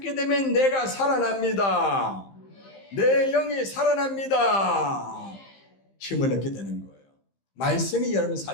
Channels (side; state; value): right; late; 15 ms